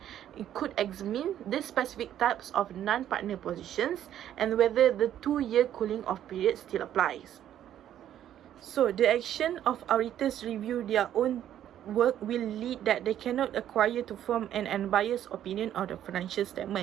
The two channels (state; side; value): quieter; left; 11.0 dB